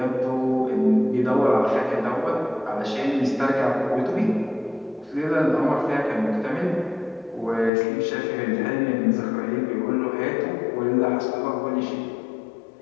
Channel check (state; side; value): drops out; right; at 7.7 s